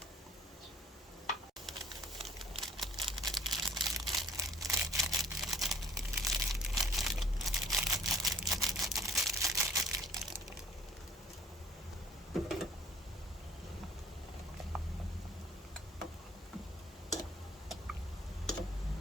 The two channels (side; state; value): both; normal; correlation 0.54